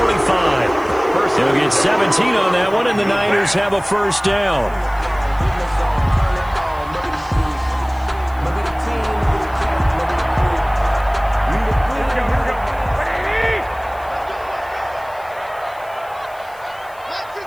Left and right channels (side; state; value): left; noise; hiss, 26 dB below the sound